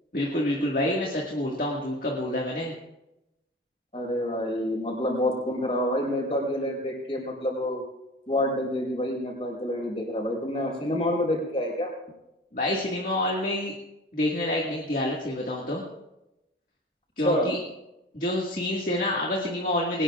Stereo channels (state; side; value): normal; both; correlation 0.37